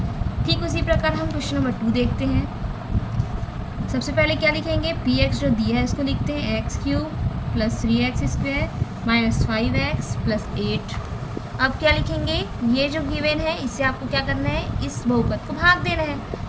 ठीक उसी प्रकार हम क्वेश्चन नंबर 2 देखते हैं। सबसे पहले क्या लिखेंगे, px जो दिया है इसको लिखते हैं x cube plus 3x² minus 5x plus 8। अब क्या लिखेंगे, ये जो गिवन है इससे आपको क्या करना है, इस बहुपद को भाग देना है।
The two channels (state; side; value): identical; both; correlation 1.00